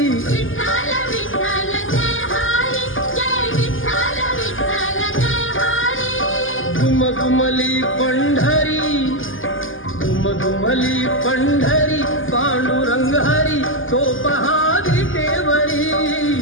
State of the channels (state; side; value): late; right; 0.58 ms